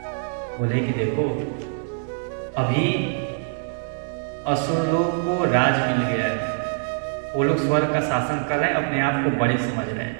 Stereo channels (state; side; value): silent; left; digital silence